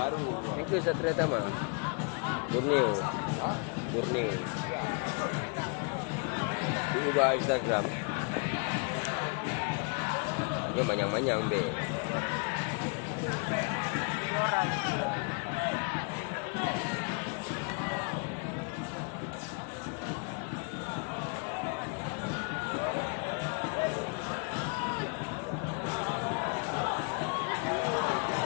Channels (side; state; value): right; quieter; 36.2 dB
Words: Yang ke Satria Tamai? Borneo. Borneo. Ubah Instagram. Hanya manyang-manyang be.